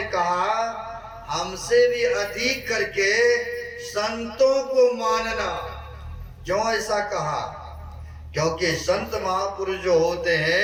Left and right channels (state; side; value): identical; both; correlation 1.00